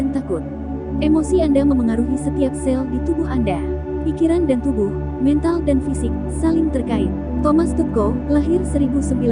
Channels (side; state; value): both; identical; correlation 1.00